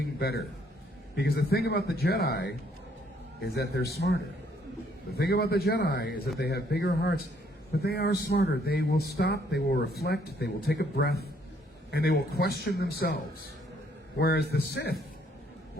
better. Because the thing about the Jedi is that they're smarter. The thing about the Jedi is that they have bigger hearts, but they are smarter. They will stop, they will reflect, they will take a breath, and they will question themselves. Whereas the Sith,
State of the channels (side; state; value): both; normal; correlation 0.67